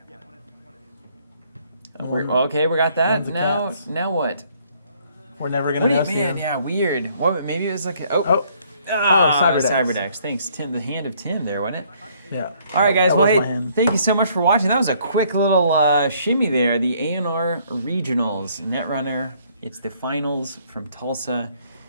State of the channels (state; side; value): inverted; both; correlation -0.64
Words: Okay, we got that. One's a Now, cat's. now what? We're never gonna know. Man, Sam. yeah, weird. What? Maybe it was like a, Cyberdecks. Cyberdecks. Thanks, Tim. The hand of Tim there, wasn't it? Yeah. All right, guys. That Well, was hey, my hand. thank you so much for watching. That was a quick little shimmy there. The A&R Regionals Netrunner. It's the finals from Tulsa.